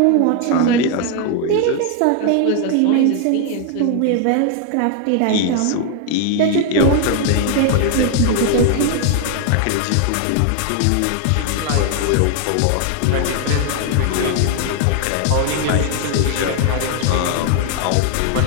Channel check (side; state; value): both; different; correlation 0.00